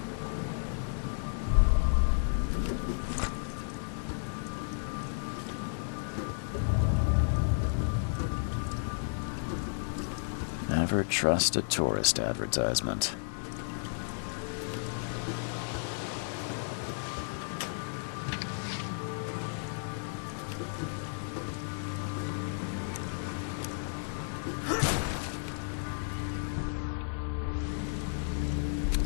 Never trust a tourist advertisement.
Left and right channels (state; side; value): silent; right; 56 dB below the other